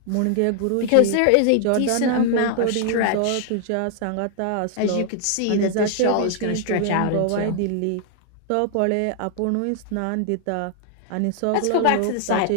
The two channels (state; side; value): different; both; correlation 0.00